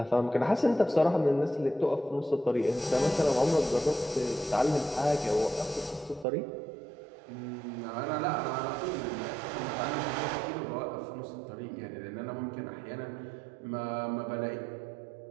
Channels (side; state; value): left; drops out; at 6.2 s